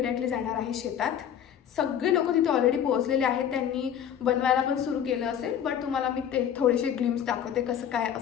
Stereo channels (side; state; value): right; quieter; 9.2 dB